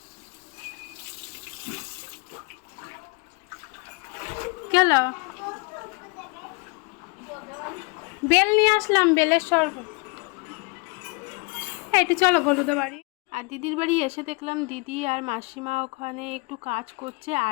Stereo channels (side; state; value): right; quieter; 30.3 dB